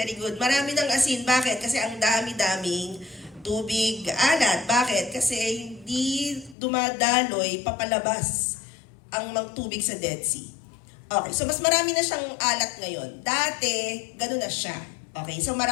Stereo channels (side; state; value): right; drops out; at 6.6 s